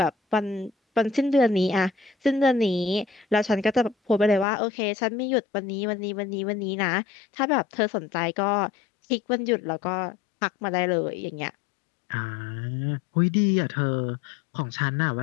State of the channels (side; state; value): right; drops out; at 4.5 s